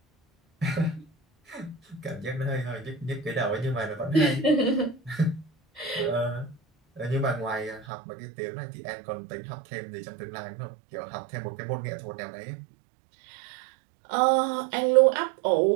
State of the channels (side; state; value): left; drops out; at 7.9 s